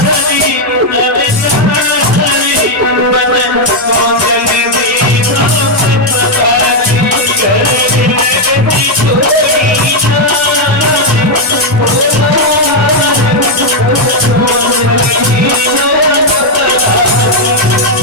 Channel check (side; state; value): both; normal; correlation 0.00